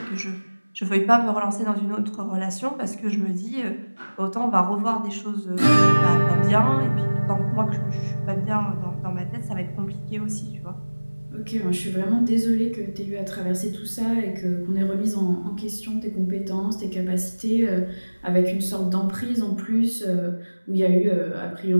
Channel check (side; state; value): both; inverted; correlation -1.00